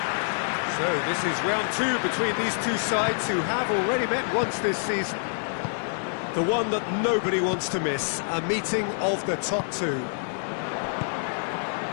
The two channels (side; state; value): right; silent; digital silence